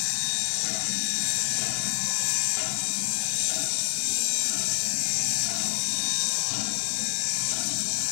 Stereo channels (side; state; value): right; silent; 60 dB below the other